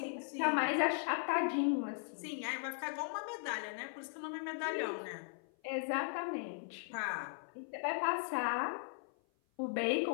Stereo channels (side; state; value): right; silent; 52 dB below the other